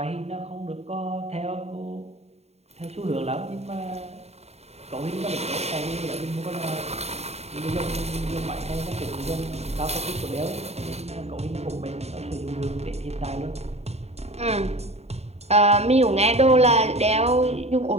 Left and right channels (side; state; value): left; late; 0.31 ms